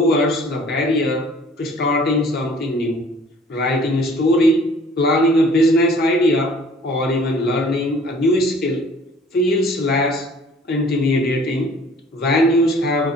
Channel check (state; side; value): normal; both; correlation 0.52